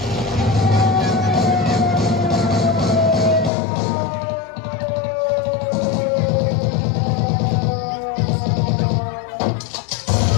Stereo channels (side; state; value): right; drops out; at 3.5 s